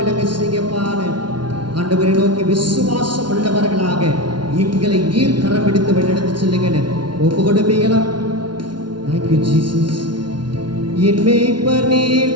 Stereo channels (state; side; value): late; left; 0.71 ms